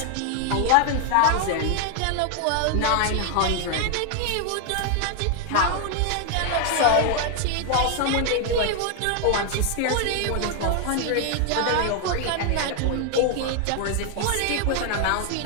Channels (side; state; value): both; different; correlation 0.00